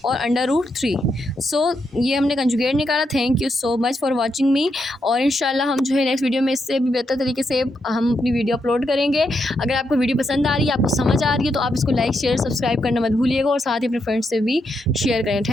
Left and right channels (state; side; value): normal; both; correlation 0.81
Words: और √3। सो ये हमने कंजुगेट निकाला। Thank you so much for watching me, और इंशाल्लाह हम जो है नेक्स्ट वीडियो में इससे भी बेहतर तरीके से हम अपनी वीडियो अपलोड करेंगे। अगर आपको वीडियो पसंद आ रही है, आपको समझ आ रही है, तो आप इसको लाइक शेयर सब्सक्राइब करना मत भूलिएगा और साथ ही अपने फ्रेंड्स से भी शेयर करें।